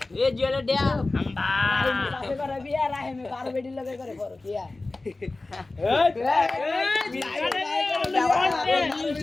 এ জলে ড্যাম আম্বা রাইমের বাপে করে বিয়া রাইমে কার বেডি লগে করে করো বিয়া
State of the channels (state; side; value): quieter; right; 3.2 dB